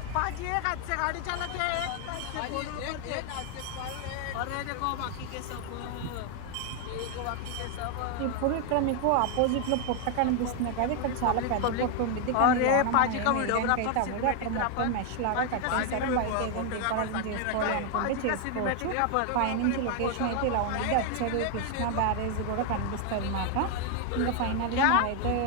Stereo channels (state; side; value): different; both; correlation 0.00